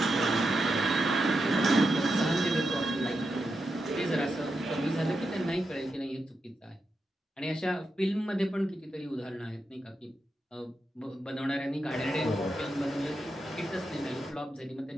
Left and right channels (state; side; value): normal; both; correlation 0.87